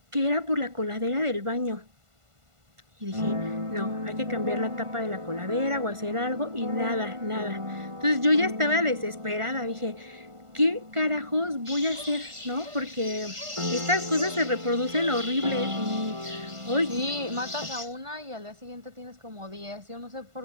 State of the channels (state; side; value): late; left; 1.5 ms